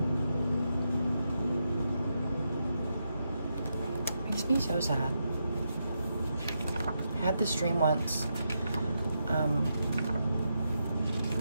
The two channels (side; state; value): both; inverted; correlation -0.83